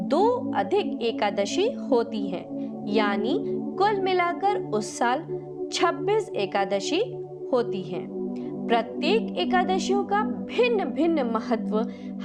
2 अधिक एकादशी होती हैं, यानी कुल मिलाकर उस साल 26 एकादशी होती हैं। प्रत्येक एकादशियों का भिन्न भिन्न महत्व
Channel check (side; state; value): both; identical; correlation 1.00